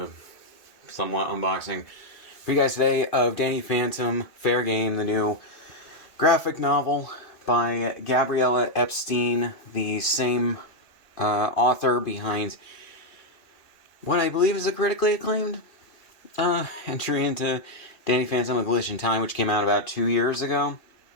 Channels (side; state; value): right; late; 2.0 ms